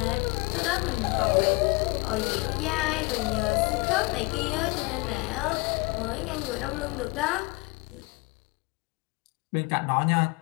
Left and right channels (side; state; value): right; quieter; 25.2 dB